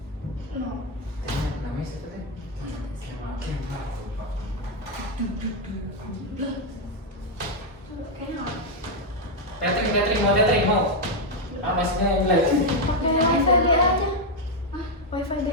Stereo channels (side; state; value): both; normal; correlation 0.02